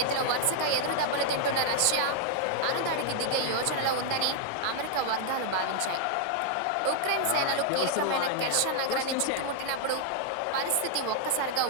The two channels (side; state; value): both; different; correlation -0.01